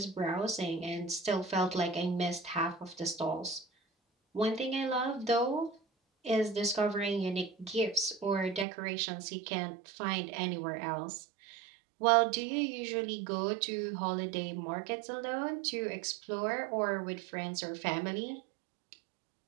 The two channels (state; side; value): drops out; left; at 8.7 s